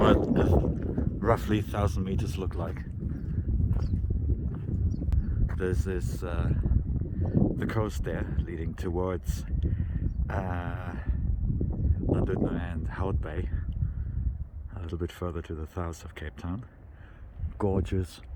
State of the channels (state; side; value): identical; both; correlation 1.00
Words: roughly 1,000 meters look like. This is the coast there leading towards London and Hout Bay, a little bit further to the south of Cape Town. Gorgeous,